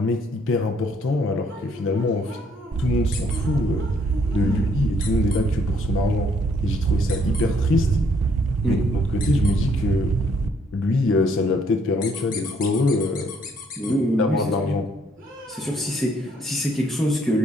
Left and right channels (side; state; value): both; normal; correlation 0.67